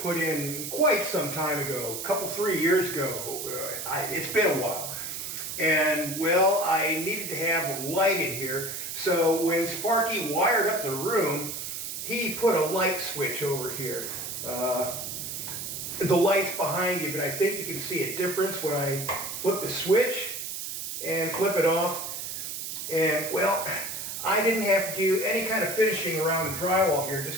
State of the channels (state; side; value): noise; right; hiss, 6 dB below the sound